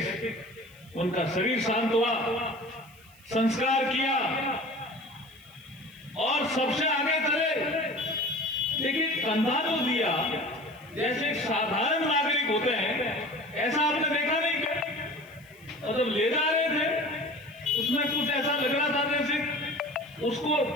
उनका शरीर शांत हुआ, संस्कार किया और सबसे आगे चले, लेकिन कंधा तो दिया जैसे एक साधारण नागरिक होते हैं, ऐसा आपने देखा नहीं क्या? और जब ले जा रहे थे उसमें कुछ ऐसा लग रहा था जैसे उसको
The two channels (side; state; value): right; noise; hiss, 26 dB below the sound